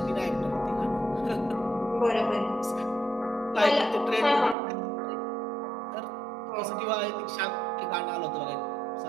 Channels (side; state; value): left; drops out; at 4.5 s